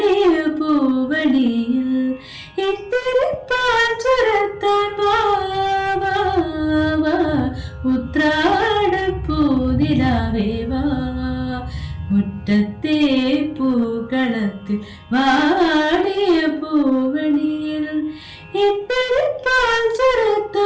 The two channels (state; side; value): identical; both; correlation 1.00